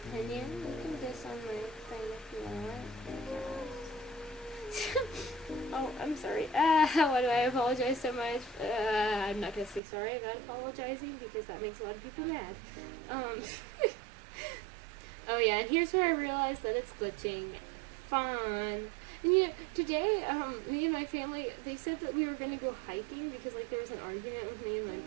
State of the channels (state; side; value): drops out; left; at 9.8 s